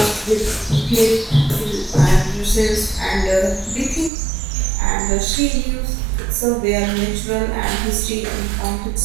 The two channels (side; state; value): left; drops out; at 4.1 s